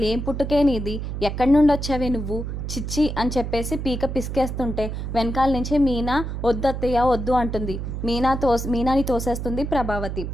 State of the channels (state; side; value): noise; right; hum, 5 dB below the sound